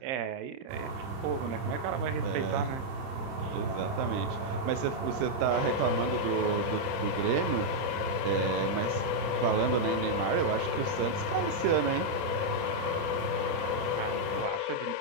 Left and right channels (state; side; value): late; left; 30 ms